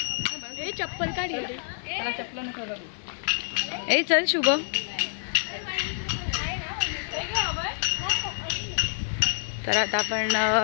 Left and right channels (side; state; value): right; silent; digital silence